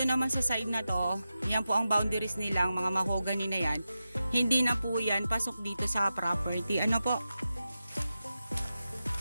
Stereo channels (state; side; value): inverted; both; correlation -0.91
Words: naman sa side na to, yan po ang boundaries nilang mga mahogany na yan. Hindi na po yan pasok dito sa property. Ano po?